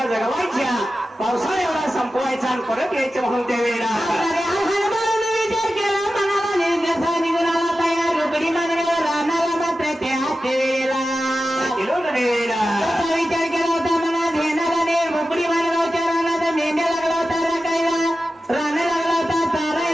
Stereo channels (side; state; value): both; normal; correlation 0.93